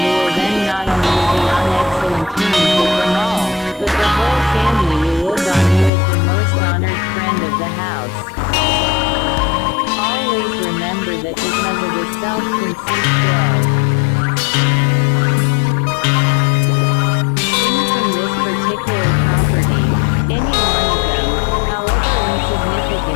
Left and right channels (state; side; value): drops out; right; at 5.9 s